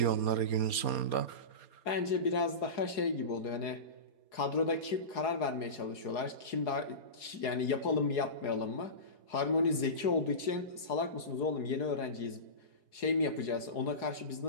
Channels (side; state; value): right; late; 4.8 ms